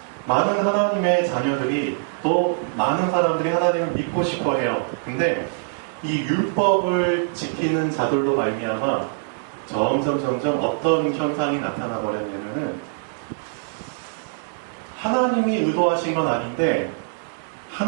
많은 하나님의 자녀들이, 또 많은 사람들이 하나님을 믿고 싶어 해요. 근데 이 율법을 지키는 자들로 말미암아 점점 어떤 현상이 나타나 버렸냐면은, 하나님이 의도하신 건 아닌데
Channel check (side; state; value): left; silent; digital silence